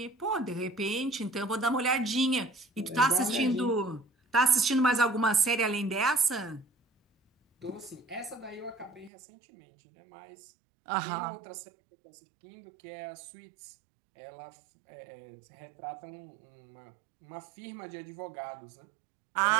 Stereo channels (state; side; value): drops out; left; at 9.1 s